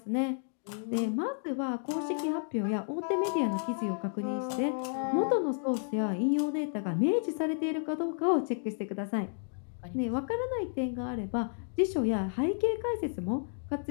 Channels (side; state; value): right; silent; digital silence